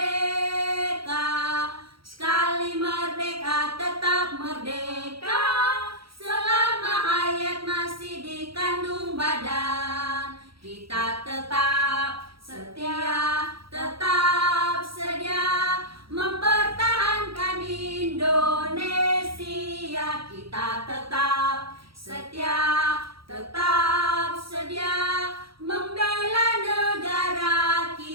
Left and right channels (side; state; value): left; late; 0.75 ms